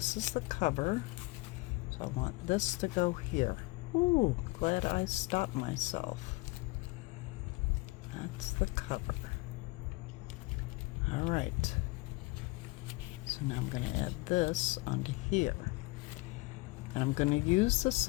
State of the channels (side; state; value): right; quieter; 23.8 dB